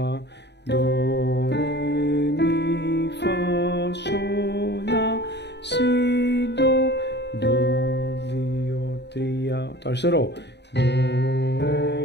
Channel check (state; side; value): late; right; 0.50 ms